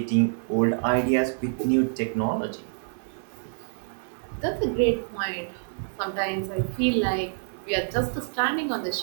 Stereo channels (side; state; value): left; silent; digital silence